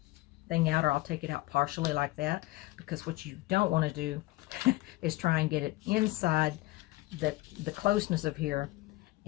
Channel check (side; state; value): right; quieter; 19.8 dB